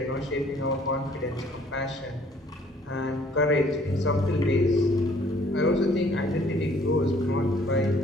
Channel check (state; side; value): normal; both; correlation 0.59